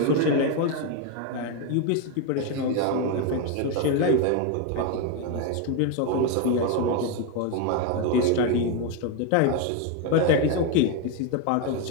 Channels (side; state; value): both; different; correlation 0.02